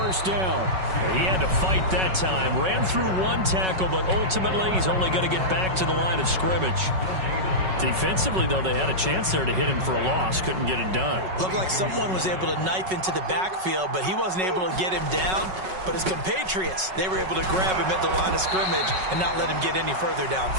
down. He had to fight that time. Ran through 1 tackle, but ultimately he's only going to get back to the line of scrimmage. Defensively, though, they had a chance there to hit him for a loss. Couldn't get it done. Looked like someone was able to knife into the backfield, but he wasn't able to get him down. But his compatriots, they were able to grab him at the line of scrimmage and not let him get any further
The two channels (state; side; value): late; left; 5.4 ms